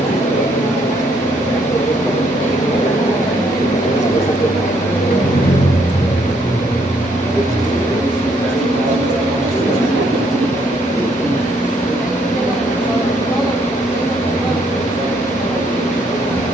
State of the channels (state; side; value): normal; both; correlation 0.70